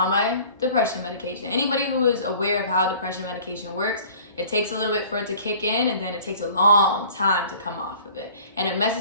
my depression medication. Anybody who is aware of how depression medication works, it takes a little bit for it to kick in, and then it takes a long time to come off of it. And it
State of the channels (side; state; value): both; inverted; correlation -0.48